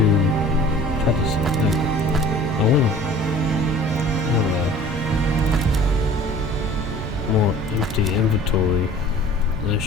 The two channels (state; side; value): normal; both; correlation 0.47